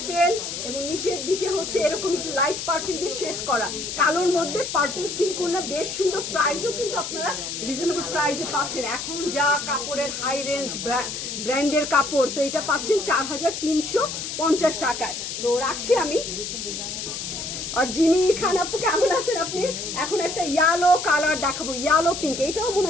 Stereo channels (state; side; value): noise; left; hiss, 6 dB below the sound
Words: এবং নিচের দিকে হচ্ছে এরকম একটু লাইট পার্পেল দিয়ে শেড করা, কালোর মধ্যে পার্পেল সিল্ক ওড়না, বেশ সুন্দর। প্রাইসও কিন্তু আপনারা রিজনেবল প্রাইসে পাচ্ছেন। এখন যা কাপড়ের হাই রেঞ্জ ব্র্যান্ডের কাপড়, তো এটা পাচ্ছেন 4350 টাকায়। তো রাখছি আমি। আর যিনি খান আপু কেমন আছেন আপনি? এখন একটা ইয়েলো কালার দেখাবো, ইয়েলো পিঙ্ক। এটাও মনে